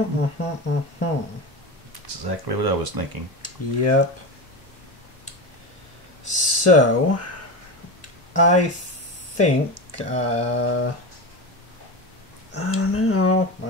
That's exactly what I was thinking. Yep. So, I think, I don't know.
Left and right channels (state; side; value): normal; both; correlation 0.22